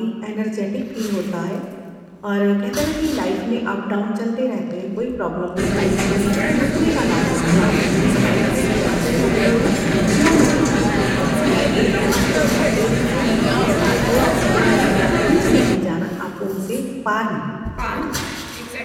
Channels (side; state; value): both; identical; correlation 1.00